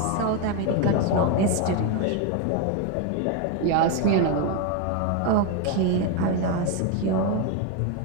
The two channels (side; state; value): both; different; correlation 0.02